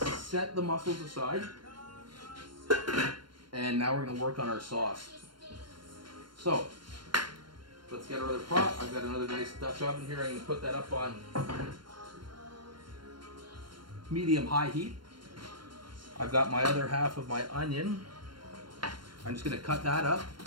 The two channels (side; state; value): left; late; 0.72 ms